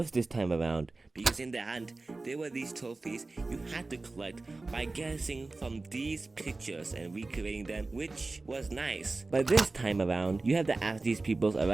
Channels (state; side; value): quieter; left; 3.4 dB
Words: this time around because in the hunt there were these trophies you had to collect by guessing from these pictures and recreating them, which was nice. But this time around you have to ask these people